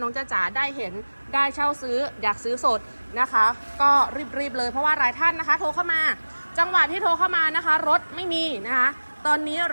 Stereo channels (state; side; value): inverted; both; correlation -1.00